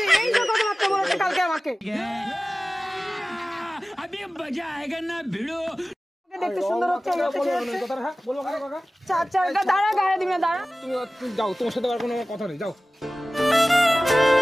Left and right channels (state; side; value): normal; both; correlation 0.97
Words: এই যে কথাবার্তা বলেছে কালকে আমাকে। দেখতে সুন্দর হচ্ছে, দাঁড়া গায়ে দিবি না, দাঁড়া। তুমি যাও, তোমার সাথে আর কোনো কথা নেই, যাও।